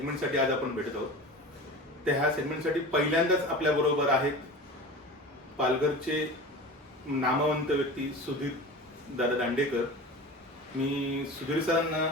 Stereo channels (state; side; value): normal; both; correlation 0.33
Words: आज आपण भेटत आहोत. त्या ह्या सेगमेंटसाठी पहिल्यांदाच आपल्याबरोबर आहेत पालघरचे नामवंत व्यक्ती सुधीर दादा दांडेकर. मी सुधीर सरांना